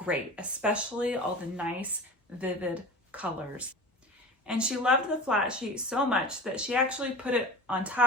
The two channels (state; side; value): normal; both; correlation 0.34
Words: especially all the nice, vivid colors. And she loved the flat sheet so much that she actually put it on